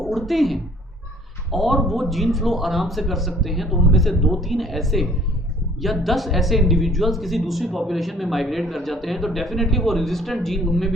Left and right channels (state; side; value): normal; both; correlation 0.56